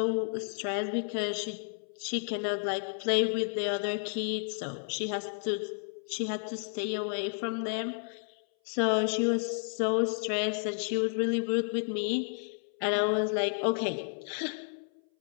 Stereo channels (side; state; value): right; silent; 57 dB below the other